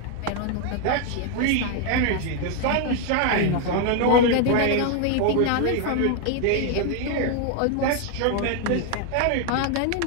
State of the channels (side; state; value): both; different; correlation 0.01